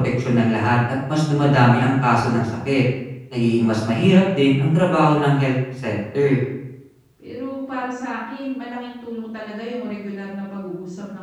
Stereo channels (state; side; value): identical; both; correlation 1.00